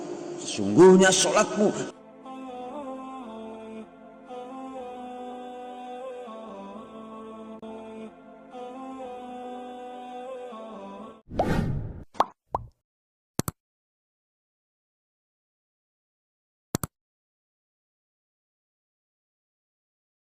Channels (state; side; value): identical; both; correlation 1.00